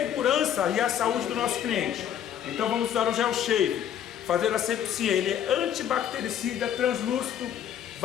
e a saúde do nosso cliente. Então vamos usar o gel shave, fazer a asepsia. Ele é antibactericida, translúcido,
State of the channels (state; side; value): quieter; right; 9.8 dB